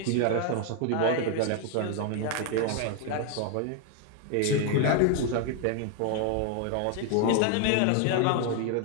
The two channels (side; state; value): both; different; correlation 0.01